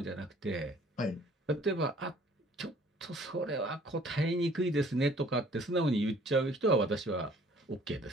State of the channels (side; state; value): both; normal; correlation 0.56